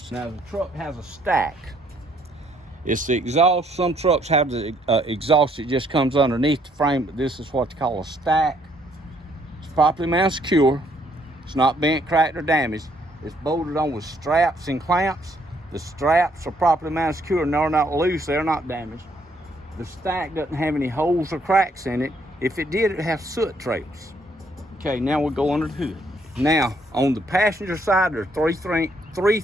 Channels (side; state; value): both; normal; correlation 0.68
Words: Now, the truck has a stack. It's the exhaust. Some trucks have the exhaust that just comes underneath the frame, but this is what they call a stack. It's properly mounted, secure. It's not bent, cracked, or damaged. It's bolted on with straps and clamps. The straps are properly mounted, secure, and they're not loose. They're not damaged. The stack doesn't have any holes or cracks in it. If it did, it'd have soot trails. Okay, now we'll go under the hood. Now, on the passenger side, there are three